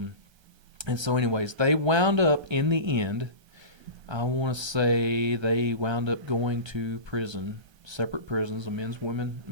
so anyways, they wound up in the end, I want to say they wound up going to prison, separate prisons, a men's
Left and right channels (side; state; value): left; late; 1.3 ms